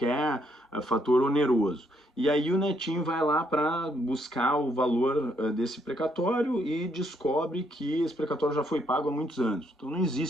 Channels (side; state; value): both; normal; correlation 0.73